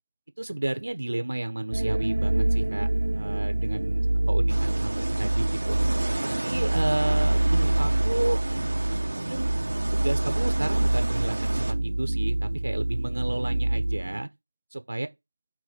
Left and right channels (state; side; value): inverted; both; correlation -1.00